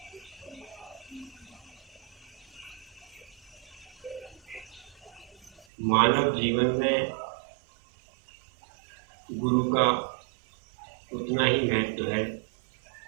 मानव जीवन में गुरु का उतना ही महत्व है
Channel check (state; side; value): drops out; left; at 5.7 s